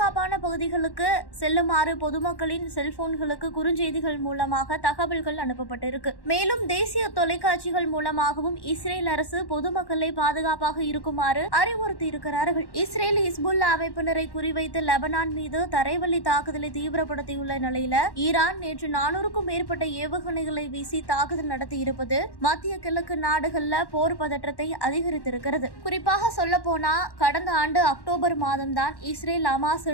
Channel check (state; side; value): late; right; 1.1 ms